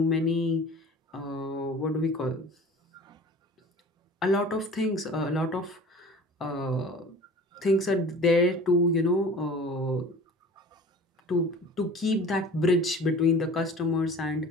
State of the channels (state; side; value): normal; both; correlation 0.42